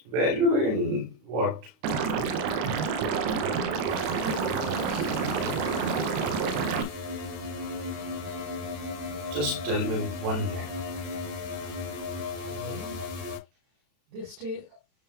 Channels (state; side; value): late; left; 32 ms